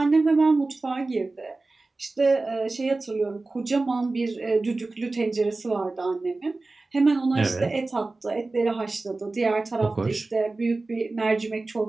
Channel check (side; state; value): left; quieter; 3.3 dB